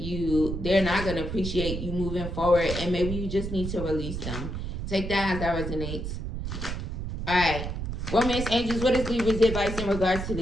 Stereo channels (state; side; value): noise; right; rumble, 5 dB below the sound